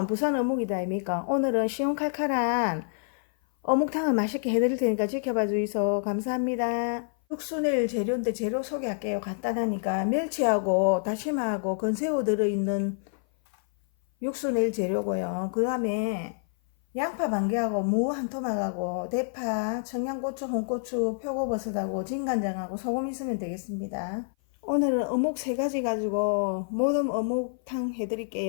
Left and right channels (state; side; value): silent; right; 57 dB below the other